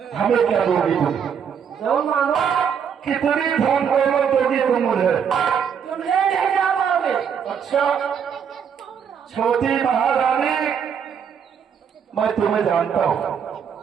हमें क्या दोगी तुम? जो मांगो कितनी धन दौलत दोगी तुम मुझे? तुम ले नहीं जा पाओगे। अच्छा, छोटी महारानी, मैं तुम्हें जानता हूँ,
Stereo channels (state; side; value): quieter; left; 7.5 dB